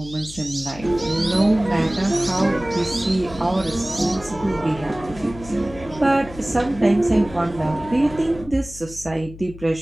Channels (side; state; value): left; noise; hum, 16 dB below the sound